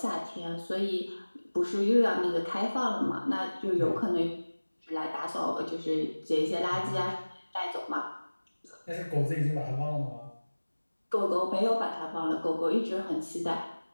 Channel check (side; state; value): both; inverted; correlation -1.00